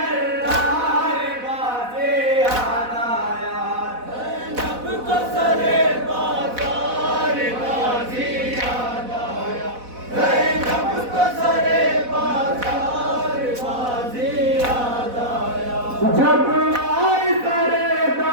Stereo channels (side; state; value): left; late; 4.1 ms